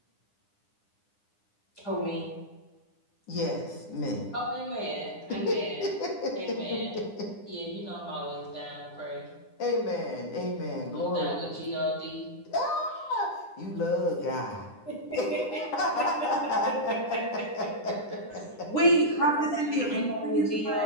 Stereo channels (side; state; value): right; late; 9.9 ms